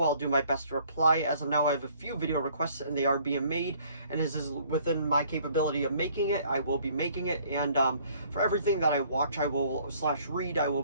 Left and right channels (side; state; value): both; inverted; correlation -0.59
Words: I'll do my best to reply. As of now, I have a few video requests and they are being made, and as is within my capability of making it, I will be making it. And for everything that I watch, I will /read, I will